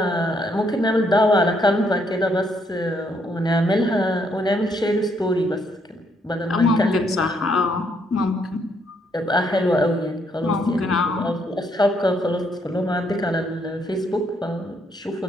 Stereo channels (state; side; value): normal; both; correlation 0.72